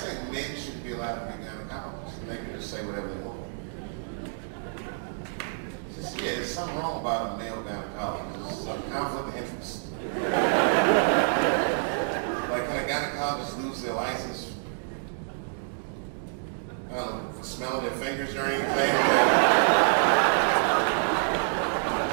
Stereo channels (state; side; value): silent; left; digital silence